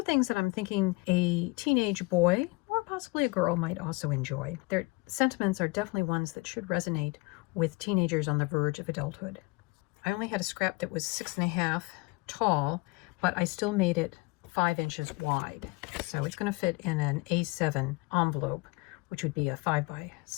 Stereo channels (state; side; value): quieter; right; 25.9 dB